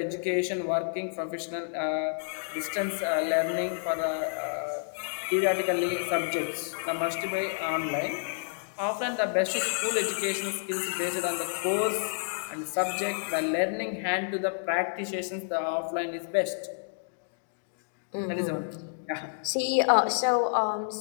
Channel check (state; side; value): silent; right; digital silence